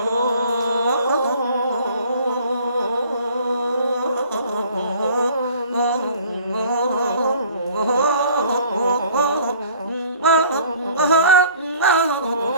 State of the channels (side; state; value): both; inverted; correlation -0.51